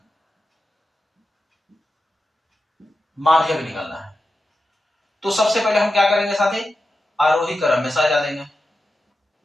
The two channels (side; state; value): both; normal; correlation 0.91